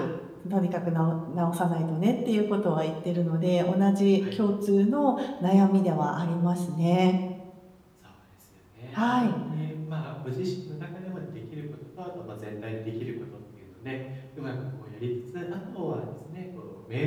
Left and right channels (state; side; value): identical; both; correlation 1.00